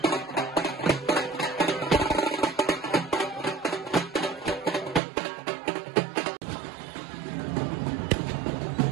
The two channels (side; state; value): left; drops out; at 5.0 s